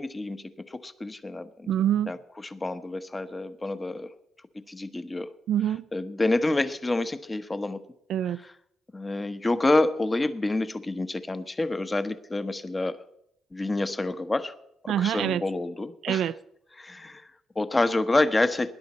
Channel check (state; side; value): normal; both; correlation 0.87